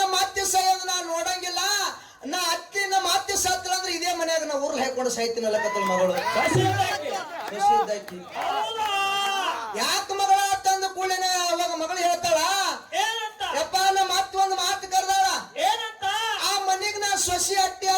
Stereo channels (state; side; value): identical; both; correlation 1.00